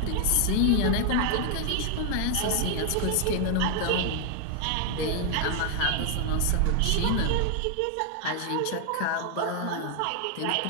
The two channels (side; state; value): both; different; correlation 0.00